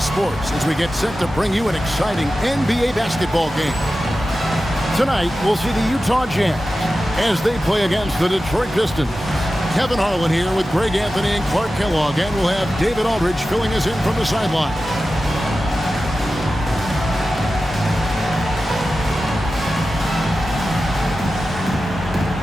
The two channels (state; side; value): normal; both; correlation 0.93